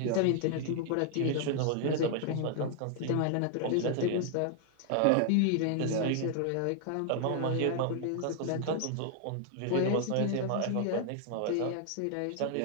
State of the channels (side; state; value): both; different; correlation 0.00